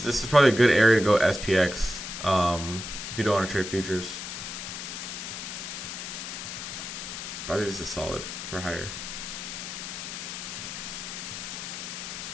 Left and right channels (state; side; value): noise; left; hiss, 7 dB below the sound